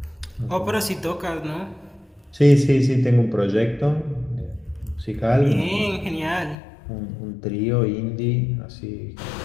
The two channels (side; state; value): right; drops out; at 6.6 s